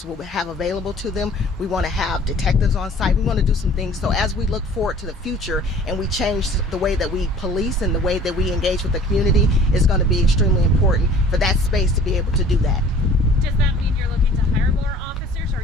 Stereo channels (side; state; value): both; normal; correlation 0.49